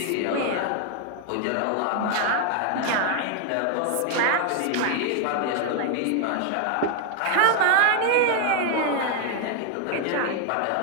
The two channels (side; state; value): both; different; correlation 0.00